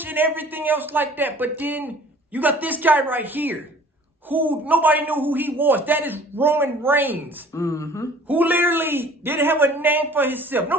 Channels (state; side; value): normal; both; correlation 0.50